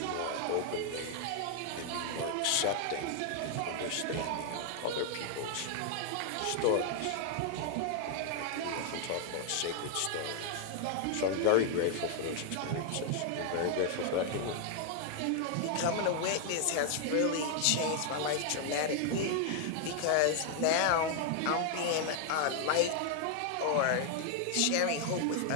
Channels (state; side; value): different; both; correlation 0.00